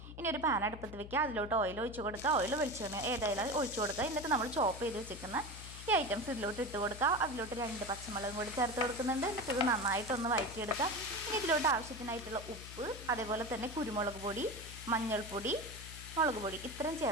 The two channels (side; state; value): left; noise; hum, 13 dB below the sound